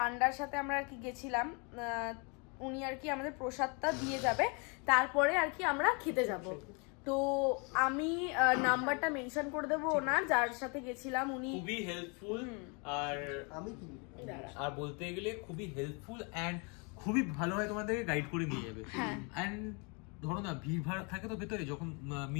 সাথে আমরা আর কি গেছিলাম, উনি আর কি আমাদের প্রসাদটা দিয়ে যাবে, তারপরে আর কি আমরা খেতে যাব। তো আমি নাম্বারটা মেনশন করে দেবো ওনার, যার সাথে গেছিলাম। উনি খুবই হেল্পফুল, আর বলতে গেলে খুবই হেল্পফুল এন্ড খুবই ভালোভাবে তোমাদেরকে গাইড করে নিয়ে যাবে। এন্ড ধরো না ভিড় ভাড় থাকে তো ভেতরে, যখন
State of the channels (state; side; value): quieter; right; 33.4 dB